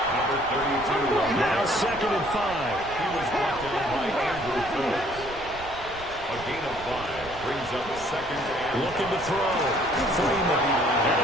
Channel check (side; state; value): right; noise; rumble, 16 dB below the sound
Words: 32. Now 2nd and 5. He was brought down by Andrew Phillips. A gain of 5 brings up 2nd and Looking to throw. Freeman. And